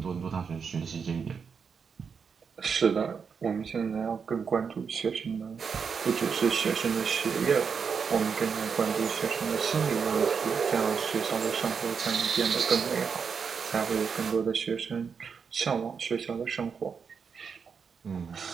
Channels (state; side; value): quieter; left; 6.1 dB